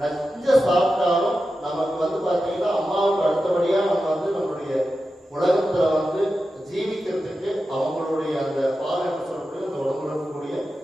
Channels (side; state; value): both; normal; correlation 0.91